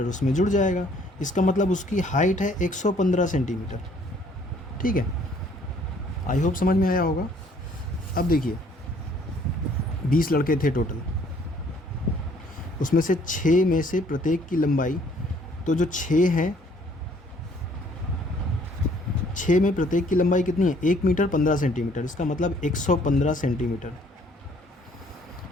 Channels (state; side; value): normal; both; correlation 0.61